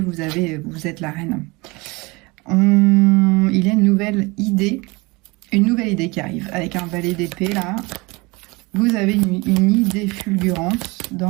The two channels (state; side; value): quieter; left; 24.9 dB